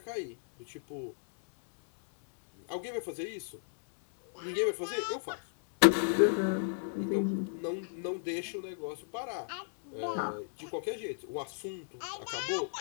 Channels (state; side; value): silent; right; 55 dB below the other